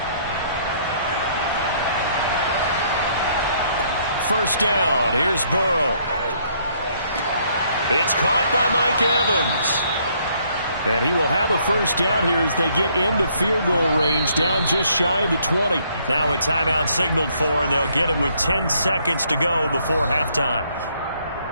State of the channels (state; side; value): inverted; both; correlation -0.67